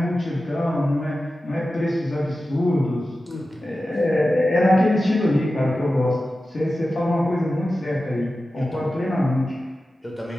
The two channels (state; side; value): normal; both; correlation 0.94